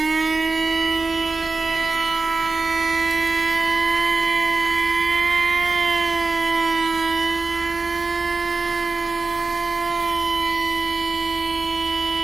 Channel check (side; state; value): left; quieter; 3.9 dB